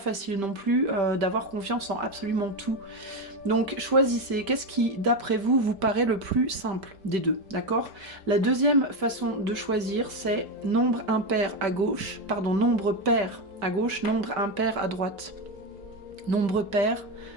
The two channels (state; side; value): late; left; 5.1 ms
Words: non plus d'avoir confiance en absolument tout. Donc choisissez, qu'est-ce qui d'après vous vous paraît le plus simple des deux, d'accord? La deuxième façon de choisir c'est nombre impair à gauche, pardon, nombre pair à gauche, nombre impair à droite. Nombre pair,